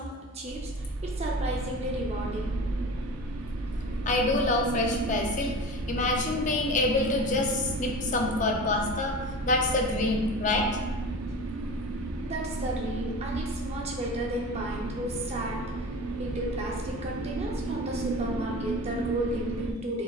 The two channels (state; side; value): normal; both; correlation 0.34